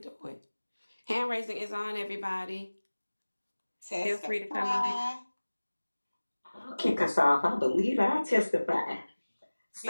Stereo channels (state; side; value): inverted; both; correlation -1.00